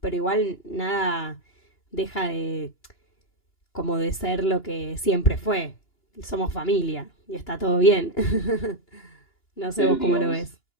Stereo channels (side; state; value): right; late; 2.9 ms